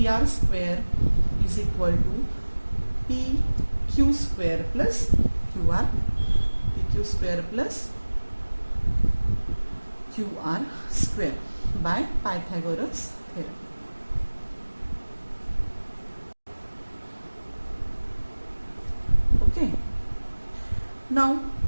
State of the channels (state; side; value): inverted; both; correlation -1.00